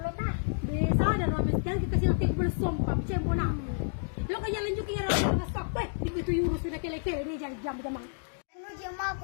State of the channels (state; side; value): silent; right; digital silence